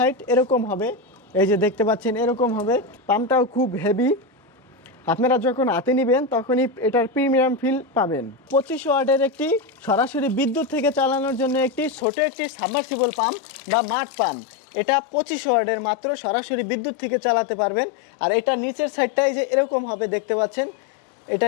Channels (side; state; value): right; drops out; at 12.1 s